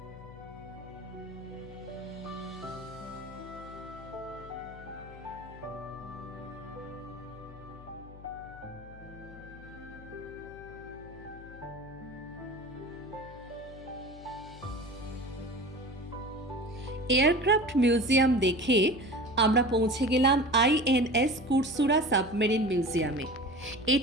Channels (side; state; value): left; noise; hum, 17 dB below the sound